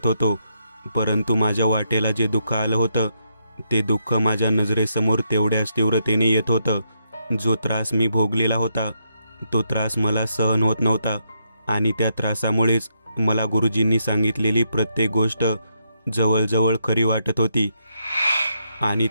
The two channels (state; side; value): inverted; both; correlation -0.78